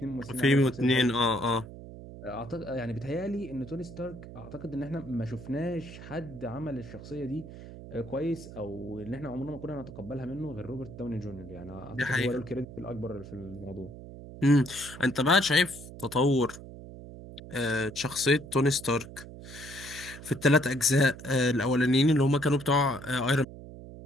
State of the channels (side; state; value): right; noise; hum, 14 dB below the sound